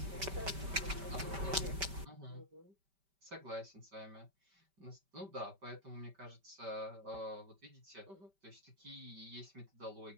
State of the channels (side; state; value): left; late; 5.1 ms